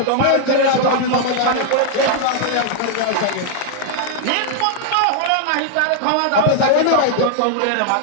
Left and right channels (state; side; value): different; both; correlation 0.00